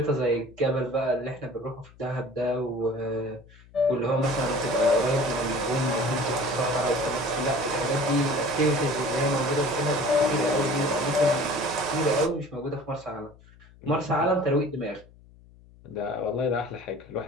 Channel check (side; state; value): left; noise; hum, 24 dB below the sound